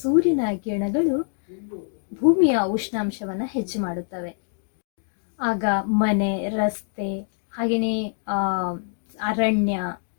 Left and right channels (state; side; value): silent; right; 62 dB below the other